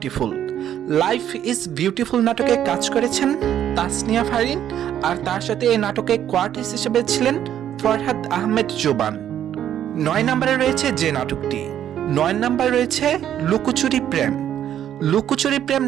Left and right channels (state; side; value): quieter; left; 10.5 dB